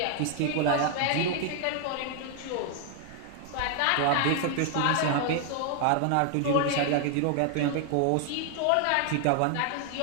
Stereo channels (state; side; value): different; both; correlation 0.00